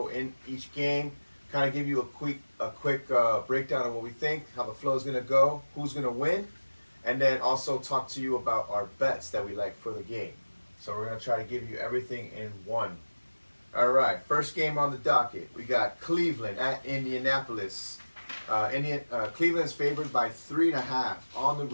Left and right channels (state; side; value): inverted; both; correlation -1.00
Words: in each game, kind of give you a quick breakdown of what we think, how the flow is gonna go, who's gonna win, and then also talk to you about our bets that we like for the game. So we're gonna try to give you everything in one. All right, first game on the docket, we got Cleveland at Indianapolis. Cleveland is favored by 3.5 on the